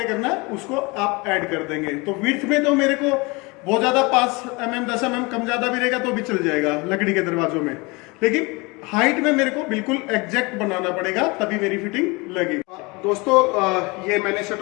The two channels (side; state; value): right; quieter; 26.3 dB